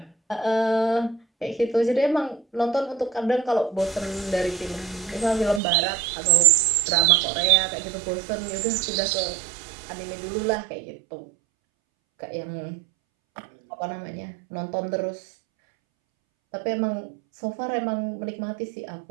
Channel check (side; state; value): left; drops out; at 5.6 s